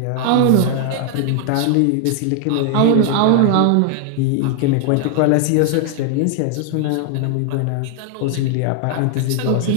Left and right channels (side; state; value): both; different; correlation 0.00